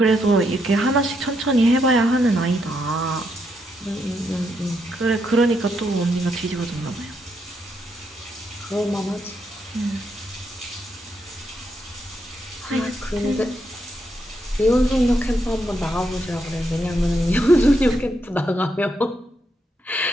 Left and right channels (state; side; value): normal; both; correlation 0.79